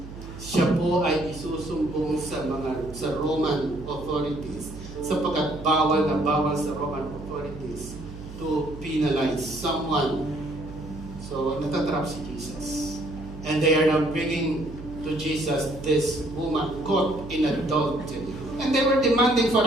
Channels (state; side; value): noise; right; hum, 13 dB below the sound